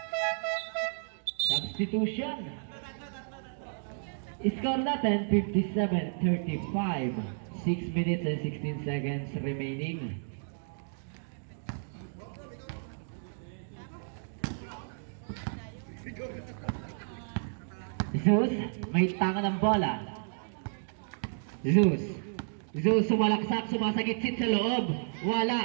Substitution. Score natin 57-35. 6 minutes and 16 seconds remaining. Zeus, may tanga ng bola. Zeus sumalaksak, sumasagitsit sa loob.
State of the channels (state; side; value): silent; left; digital silence